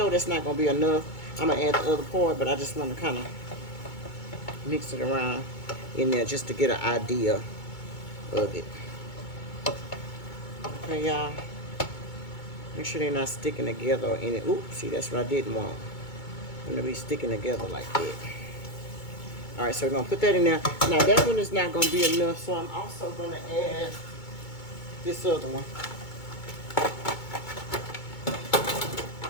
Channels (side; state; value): right; late; 2.2 ms